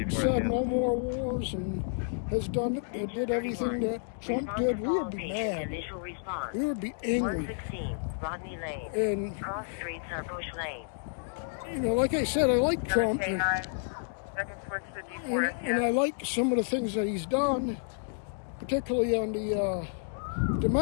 said no more wars and has done it, and did everything that Trump did, we would be mad. Initial response. We would be angry. 116 Rodney Lane. And Cross streets are Bush Lane. you know, like I said, I like Trump, and I like some of the things that he's done, particularly on the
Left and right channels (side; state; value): right; silent; digital silence